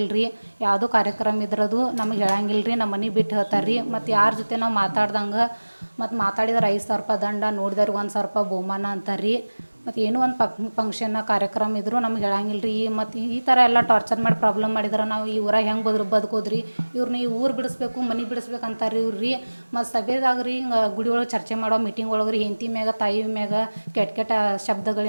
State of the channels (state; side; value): inverted; both; correlation -1.00